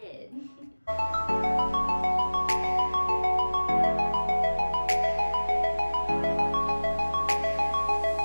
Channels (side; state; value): both; inverted; correlation -1.00